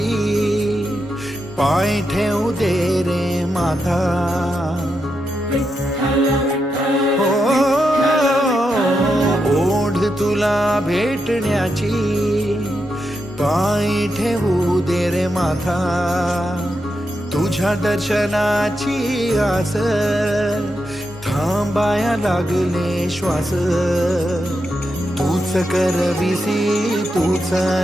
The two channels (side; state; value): both; normal; correlation 0.85